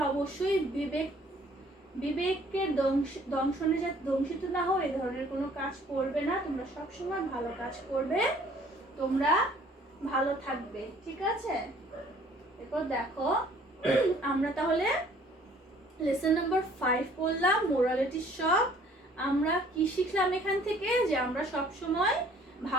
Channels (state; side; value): normal; both; correlation 0.57